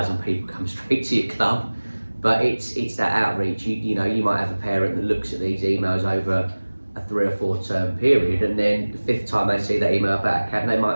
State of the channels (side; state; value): both; inverted; correlation -1.00